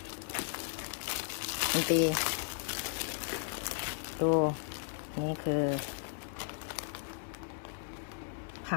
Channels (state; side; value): silent; right; 54 dB below the other